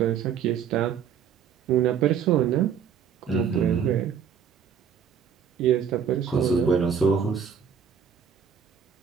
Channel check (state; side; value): quieter; left; 7.6 dB